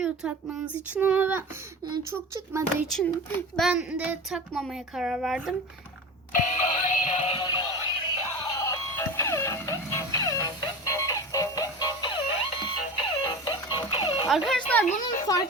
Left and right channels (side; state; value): both; normal; correlation 0.30